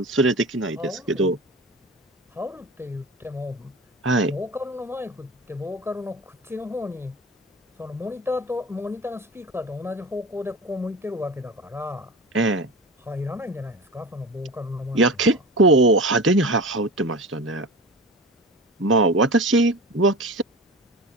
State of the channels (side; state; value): both; normal; correlation 0.32